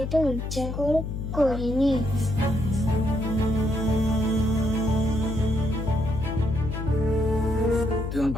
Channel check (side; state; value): left; noise; hum, 4 dB below the sound